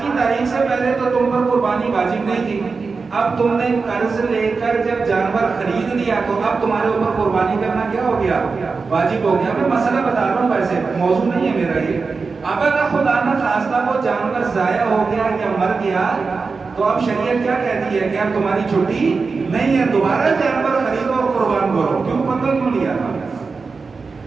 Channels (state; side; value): quieter; left; 4.5 dB